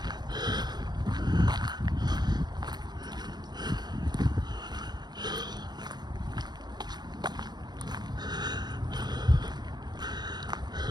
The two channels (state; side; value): late; left; 0.20 ms